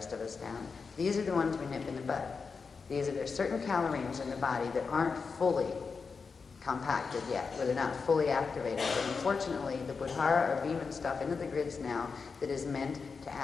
of us down. These are the ones we nip in the bud. There's certain calorines in the body that aren't fully compacted yet, where they're not fully activated. But unfortunately, the Buddhara are beaming stuff into the grids now that is meant to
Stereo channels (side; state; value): right; quieter; 5.1 dB